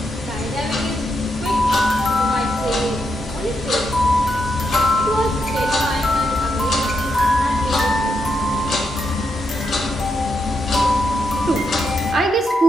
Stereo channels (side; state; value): both; normal; correlation 0.82